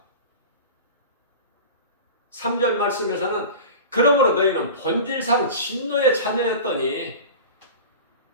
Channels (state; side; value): inverted; both; correlation -0.33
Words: 3절 말씀에서는 그러므로 너희는 본질상 진노의 자녀였더니